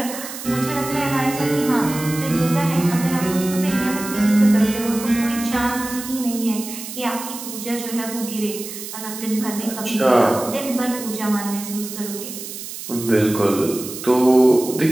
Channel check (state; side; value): noise; right; hiss, 10 dB below the sound